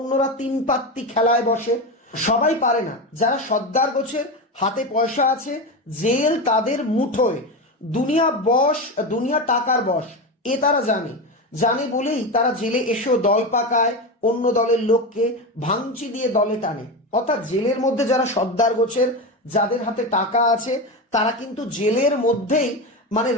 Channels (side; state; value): both; normal; correlation 0.19